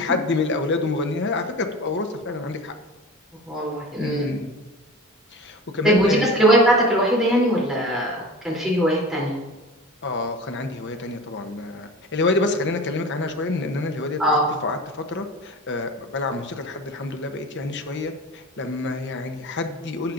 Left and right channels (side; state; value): both; normal; correlation 0.35